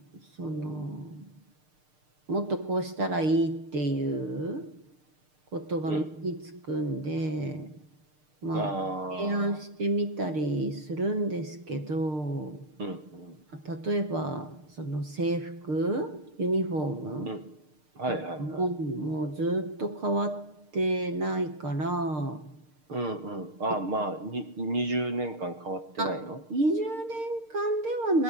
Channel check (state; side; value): late; left; 6.6 ms